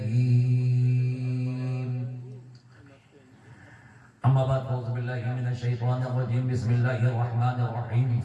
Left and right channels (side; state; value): both; identical; correlation 1.00